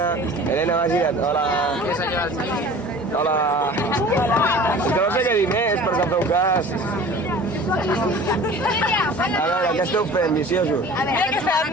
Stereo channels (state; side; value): normal; both; correlation 0.43